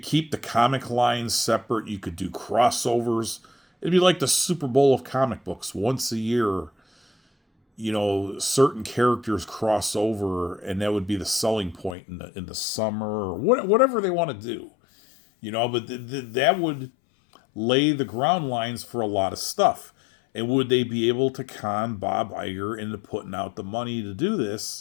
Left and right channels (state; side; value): drops out; right; at 12.0 s